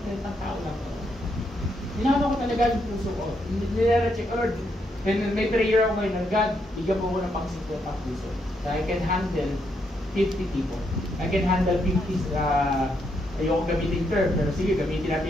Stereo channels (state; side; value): normal; both; correlation 0.77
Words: 30 tao lang ba ito? Hinama ko talaga yung puso ko. Nire-check, Lord. And may prayer ako ngayon na, God, bigyan po ko ng pang 50 puso. So I can handle 50 people. I can handle 50, ayoko gamitin term, pero sige, gamitin